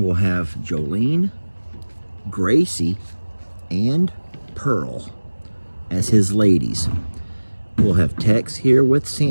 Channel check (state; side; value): inverted; both; correlation -1.00